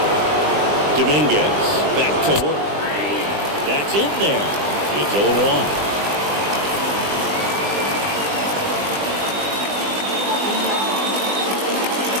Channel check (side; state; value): left; late; 20 ms